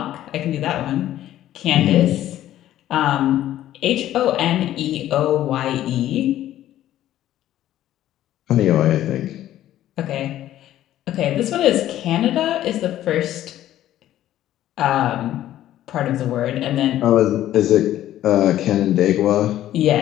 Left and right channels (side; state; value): right; quieter; 13.0 dB